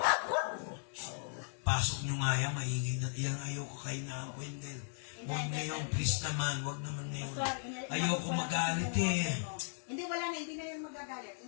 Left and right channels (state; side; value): silent; right; digital silence